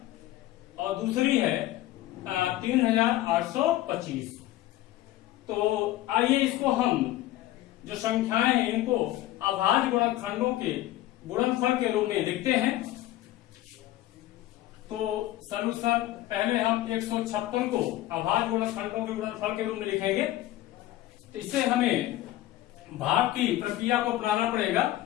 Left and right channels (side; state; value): right; quieter; 15.1 dB